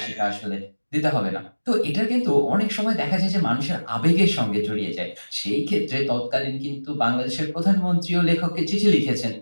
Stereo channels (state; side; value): inverted; both; correlation -1.00